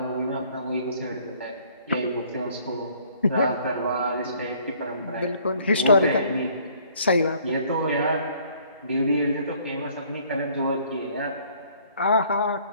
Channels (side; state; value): both; inverted; correlation -0.60